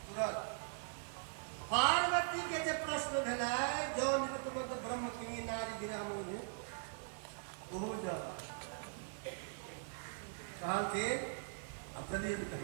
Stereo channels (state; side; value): silent; left; 50 dB below the other